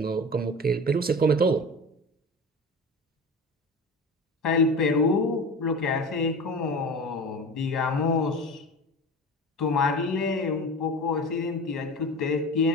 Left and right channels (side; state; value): both; normal; correlation 0.32